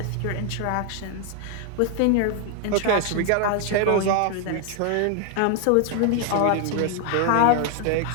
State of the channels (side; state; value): both; different; correlation 0.00